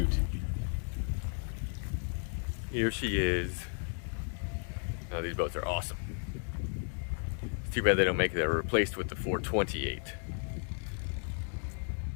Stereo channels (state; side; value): silent; right; 55 dB below the other